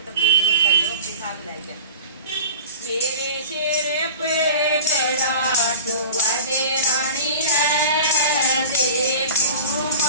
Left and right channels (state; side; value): inverted; both; correlation -0.38